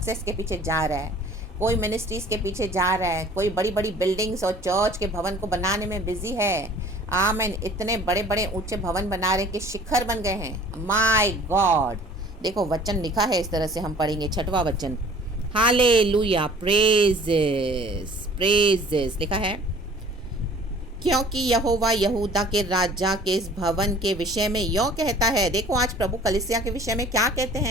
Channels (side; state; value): both; normal; correlation 0.50